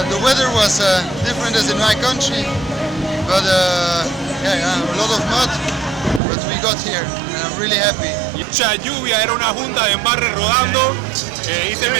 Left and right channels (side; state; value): left; drops out; at 6.2 s